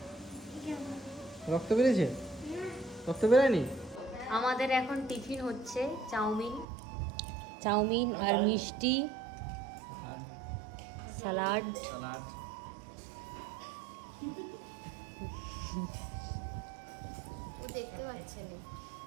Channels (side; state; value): left; drops out; at 6.7 s